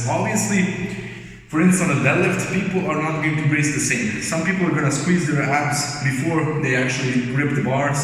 Obviously. For instance, on a deadlift, people are not going to brace the same. Some people are going to squeeze their abs before they actually grip the bar.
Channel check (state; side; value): identical; both; correlation 1.00